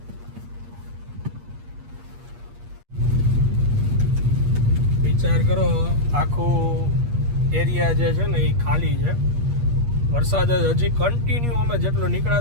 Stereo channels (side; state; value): left; late; 8.5 ms